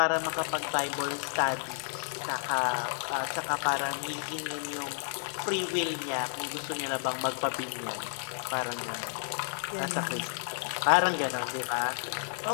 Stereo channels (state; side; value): silent; right; 57 dB below the other